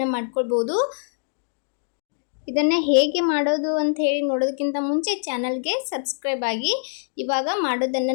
ಮಾಡ್ಕೊಳ್ಬೋದು. ಇದನ್ನು ಹೇಗೆ ಮಾಡೋದು ಅಂತ ಹೇಳಿ ನೋಡೋದಕ್ಕಿಂತ ಮುಂಚೆ ಚಾನಲ್ಗೆ ಸಬ್ಸ್ಕ್ರೈಬ್ ಆಗಿ. ಇವಾಗ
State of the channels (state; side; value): silent; right; digital silence